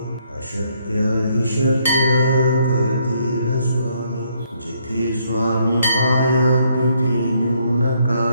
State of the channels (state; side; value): inverted; both; correlation -0.71